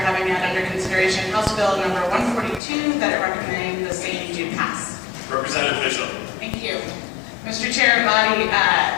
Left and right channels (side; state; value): right; drops out; at 2.6 s